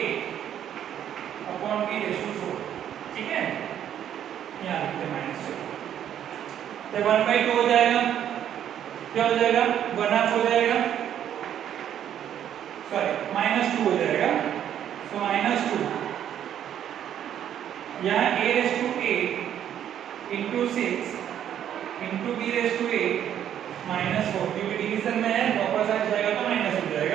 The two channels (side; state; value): left; quieter; 10.1 dB